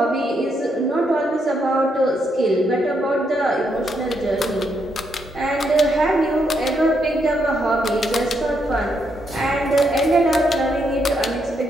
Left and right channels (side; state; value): both; normal; correlation 0.78